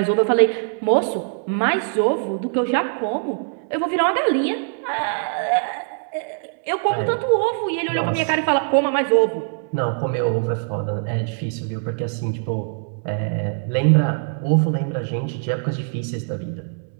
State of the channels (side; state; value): left; silent; 64 dB below the other